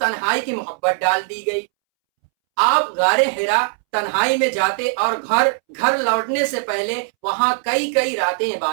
کی محبت ڈال دی گئی. آپ غار حرا تنہائی میں جاتے اور گھر لوٹنے سے پہلے وہاں کئی راتیں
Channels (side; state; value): left; silent; 65 dB below the other